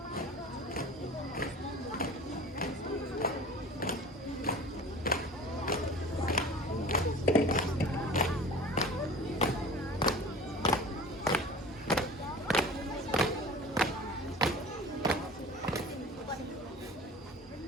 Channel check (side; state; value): both; normal; correlation 0.40